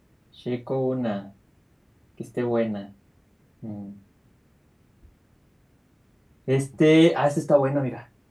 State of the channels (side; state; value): both; identical; correlation 1.00